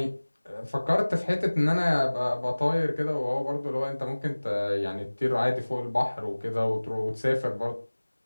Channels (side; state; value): both; inverted; correlation -1.00